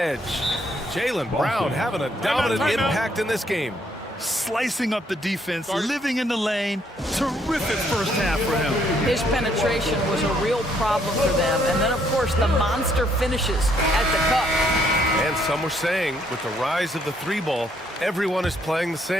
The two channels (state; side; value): normal; both; correlation 0.69